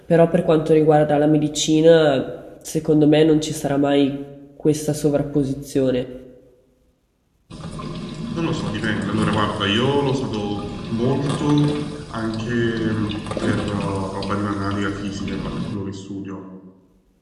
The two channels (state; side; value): identical; both; correlation 1.00